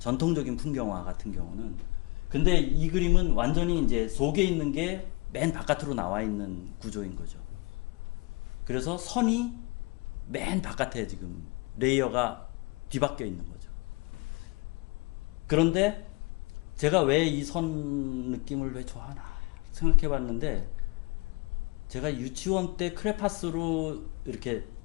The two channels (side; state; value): right; quieter; 25.8 dB